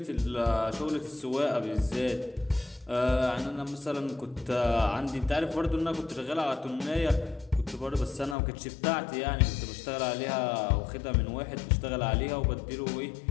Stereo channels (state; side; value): drops out; right; at 8.3 s